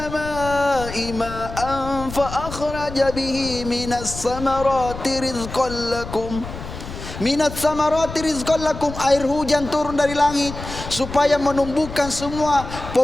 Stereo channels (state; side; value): noise; left; rumble, 10 dB below the sound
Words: ma'an fa akhraja bihi minas samarati rizqan lakum. Minat samarati rizqan lakum, air hujan turun dari langit supaya menumbuhkan semua